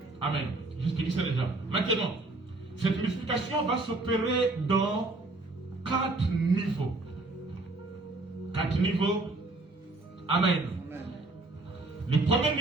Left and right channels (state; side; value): quieter; left; 3.1 dB